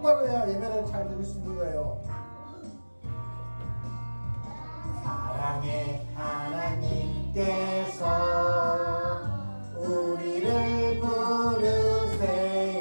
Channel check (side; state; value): both; inverted; correlation -1.00